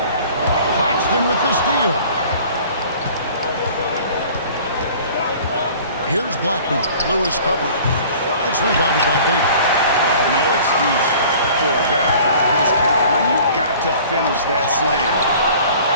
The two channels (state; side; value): inverted; both; correlation -0.47